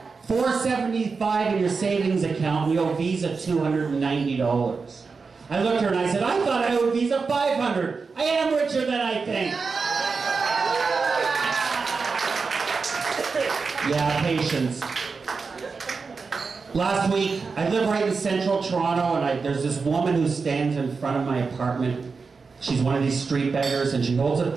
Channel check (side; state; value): left; quieter; 4.7 dB